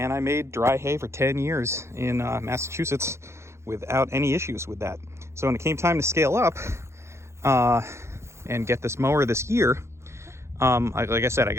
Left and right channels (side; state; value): left; late; 0.13 ms